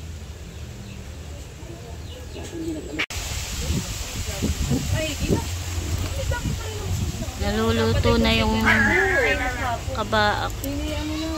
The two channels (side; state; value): both; identical; correlation 1.00